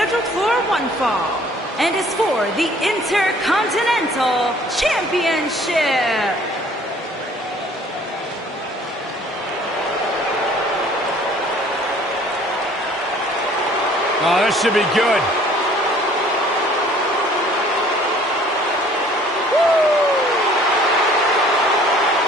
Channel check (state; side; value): normal; both; correlation 0.55